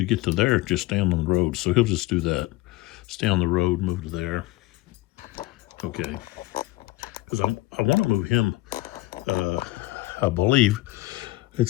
get to there, just stand on the road. So he'll just do that. Stay on the road, move to there. Okay. Because I want to move him, I believe.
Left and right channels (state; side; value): quieter; right; 19.4 dB